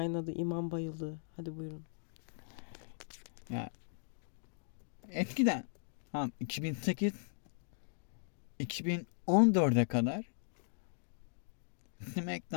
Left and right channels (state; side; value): silent; right; digital silence